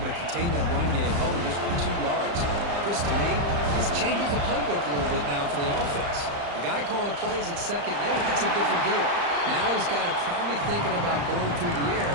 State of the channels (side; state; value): left; late; 35 ms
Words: to contain that run game, held him just for 2 yards. Chris, to me, this changes the playbook a little bit now for the offense. The guy calling the plays at 2nd and 8, that's a different deal. Now he's got to probably thinking about going through the air